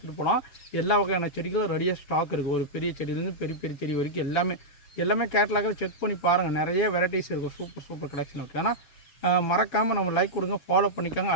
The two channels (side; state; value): right; late; 7.2 ms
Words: போகலாம். எல்லா வகையான செடிகளும் ரெடியாக ஸ்டாக் இருக்குது. ஒரு பெரிய செடியிலேருந்து பெரிய பெரிய செடி வரைக்கும் எல்லாமே கேட்டலாக செக் பண்ணி பாருங்கள். நிறைய வெரைட்டிஸ் இருக்கும். சூப்பர் கலெக்ஷன் இருக்குது. ஆனால் மறக்காமல் நம்ம லைக் கொடுங்க, ஃபாலோ பண்ணிக்காங்க.